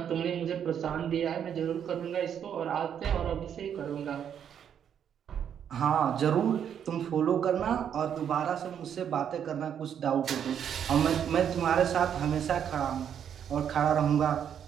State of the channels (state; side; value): quieter; left; 8.7 dB